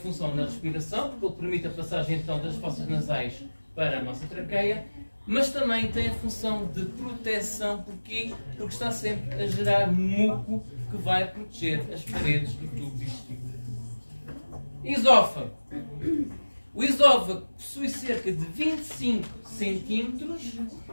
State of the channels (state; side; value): inverted; both; correlation -1.00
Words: na respiração, porque ele permite a passagem então das fossas nasais para a nossa traqueia, mas também tem a função de proteção, porque está sempre a gerar muco que vai proteger as paredes do tubo digestivo. Esófago. O esófago possui cerca de 25 centímetros